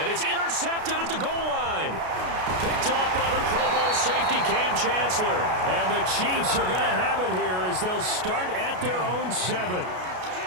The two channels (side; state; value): left; late; 33 ms